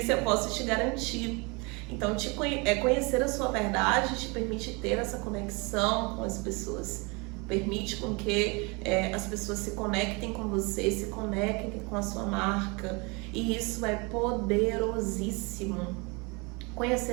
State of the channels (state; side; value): quieter; left; 29.0 dB